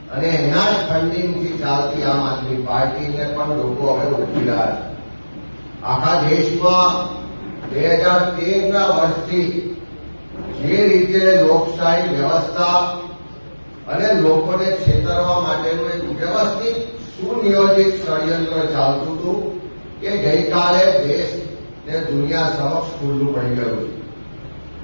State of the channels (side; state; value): both; inverted; correlation -1.00